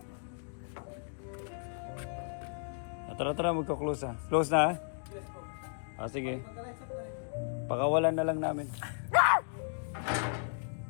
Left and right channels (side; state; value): right; silent; digital silence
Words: Tara, magka-close ha. Close na ha? Sige. Pakawalan na lang namin.